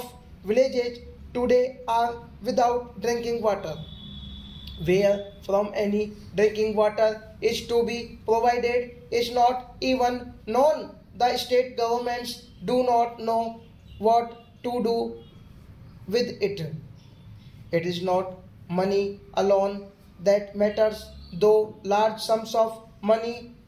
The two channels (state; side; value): identical; both; correlation 1.00